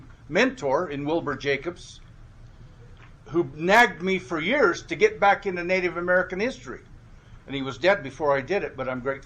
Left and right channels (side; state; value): both; identical; correlation 1.00